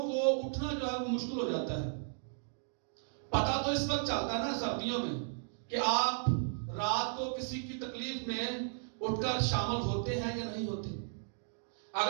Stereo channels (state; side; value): silent; left; digital silence